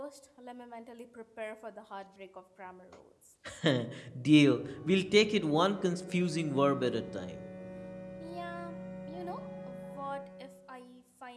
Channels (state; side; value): identical; both; correlation 1.00